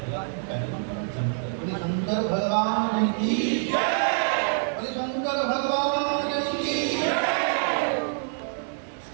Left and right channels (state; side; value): silent; left; digital silence